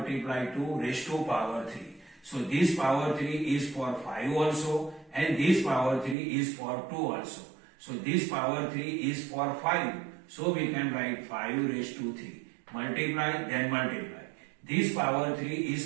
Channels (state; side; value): drops out; left; at 6.2 s